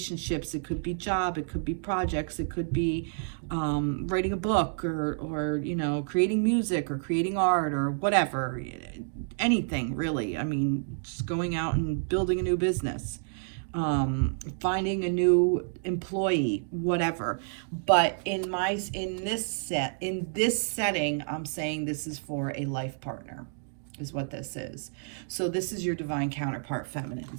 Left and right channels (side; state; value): left; silent; digital silence